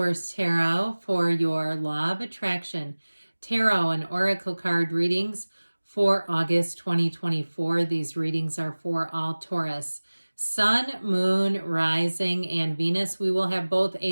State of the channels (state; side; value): inverted; both; correlation -1.00